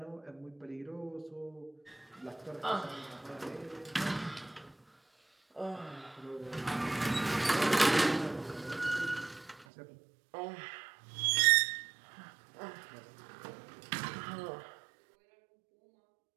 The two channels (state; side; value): drops out; left; at 9.7 s